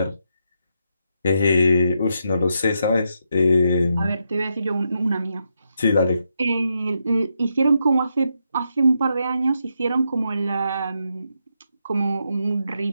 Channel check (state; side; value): inverted; both; correlation -0.82